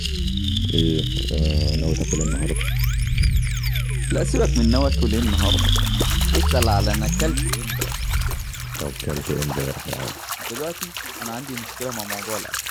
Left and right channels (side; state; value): both; identical; correlation 1.00